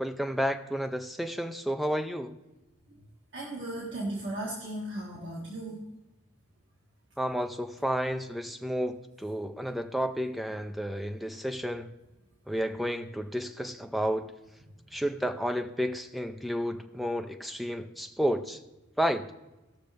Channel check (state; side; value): normal; both; correlation 0.89